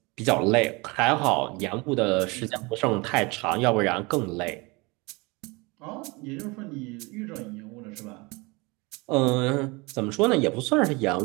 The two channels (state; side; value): quieter; left; 26.0 dB